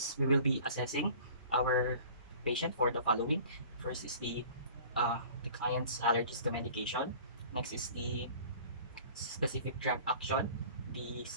we will be assessing our patient for the following. First is the client's allergies to medication. Next is the specific drug action, the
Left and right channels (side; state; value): both; inverted; correlation -0.46